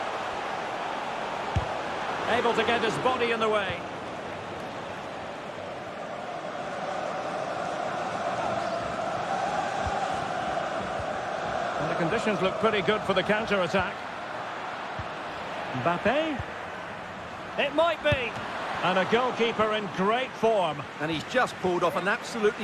Able to get his body in the way. And the conditions look pretty good for the counter-attack. Mbappe. It might be. And a goalkeeper in great form. And he's just pulled off an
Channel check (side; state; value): both; identical; correlation 1.00